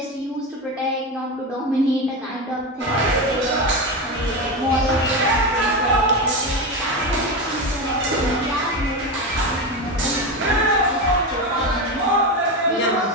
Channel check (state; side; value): normal; both; correlation 0.17